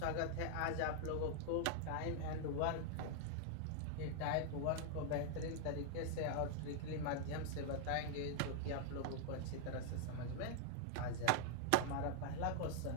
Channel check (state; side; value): different; both; correlation -0.01